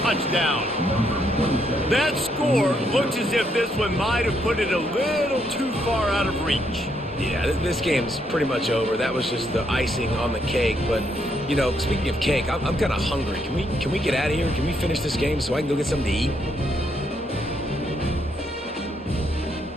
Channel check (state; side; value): normal; both; correlation 0.75